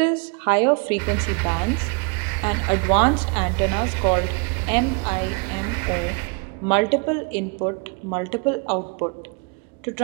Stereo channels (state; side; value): quieter; left; 33.1 dB